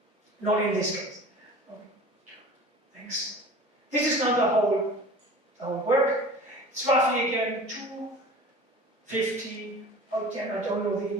Not in this case. Okay. Thanks. This is not the our work. It's roughly again 250, oh damn, I don't know the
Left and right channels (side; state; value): both; normal; correlation 0.40